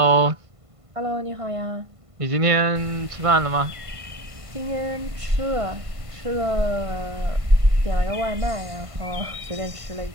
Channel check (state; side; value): late; left; 1.5 ms